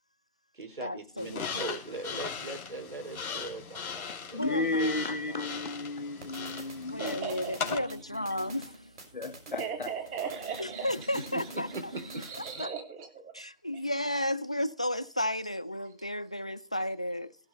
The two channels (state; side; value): inverted; both; correlation -0.46